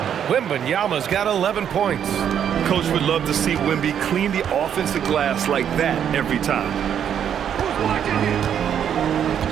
Wembanyama's got 11 points. Coach would love to see Wemby clean the offensive glass like that every time.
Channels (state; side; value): quieter; left; 8.9 dB